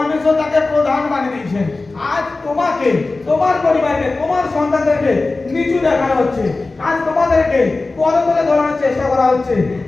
তাকে প্রধান বানিয়ে দিয়েছেন। আজ তোমাকে, তোমার পরিবারকে, তোমার সন্তানদেরকে নিচু দেখানো হচ্ছে। আজ তোমাদেরকে পদতলে ধরানোর চেষ্টা করা হচ্ছে।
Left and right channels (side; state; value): right; quieter; 3.4 dB